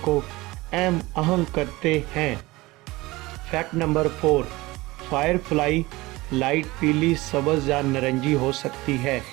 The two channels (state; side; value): quieter; left; 20.7 dB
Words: अहम करते हैं। Fact number 4, fire fly light पीली, सब्ज़ या नारंगी हो सकती है।